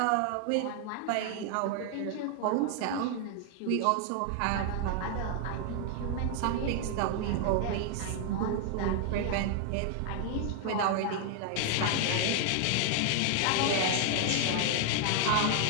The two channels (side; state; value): both; different; correlation 0.00